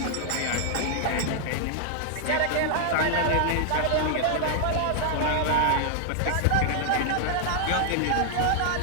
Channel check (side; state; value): both; different; correlation -0.01